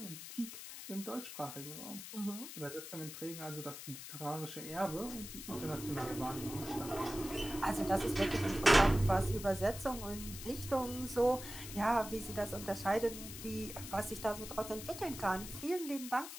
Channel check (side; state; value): left; noise; hiss, 10 dB below the sound